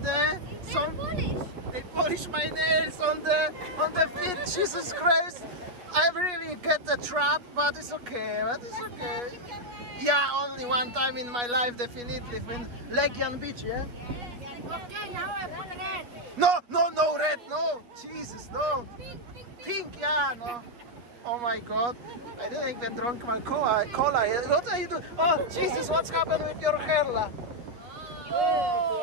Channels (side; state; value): left; late; 8.0 ms